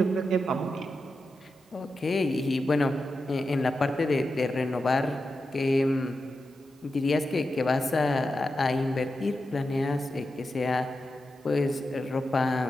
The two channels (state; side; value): normal; both; correlation 0.90